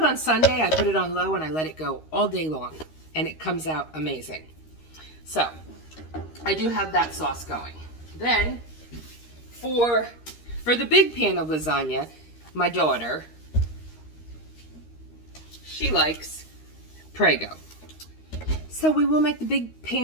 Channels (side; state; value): right; late; 13 ms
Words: on Sunday, I put it on low and I let it go all day long, and it comes out amazing. So I do have that sauce going. Then for the big pan of lasagna, my daughter, she likes Prego. So we will make the big